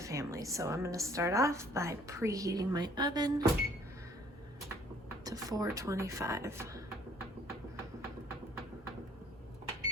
So I'm going to start off by preheating my oven to 425.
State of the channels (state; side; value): normal; both; correlation 0.59